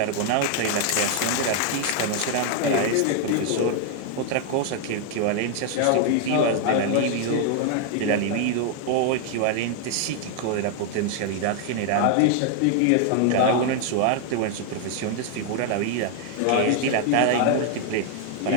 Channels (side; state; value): both; different; correlation 0.00